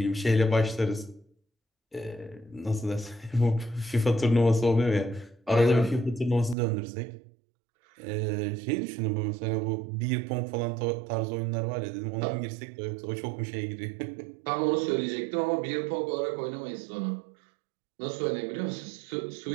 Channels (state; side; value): drops out; left; at 6.6 s